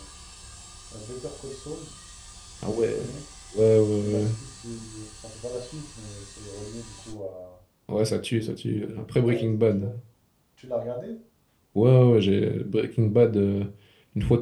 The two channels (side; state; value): both; identical; correlation 1.00